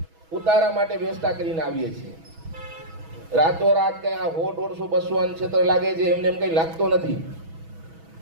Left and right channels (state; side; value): late; left; 6.2 ms